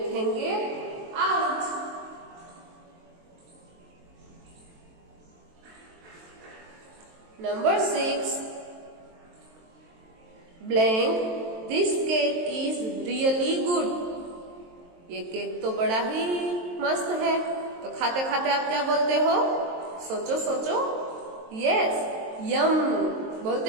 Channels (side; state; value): left; late; 23 ms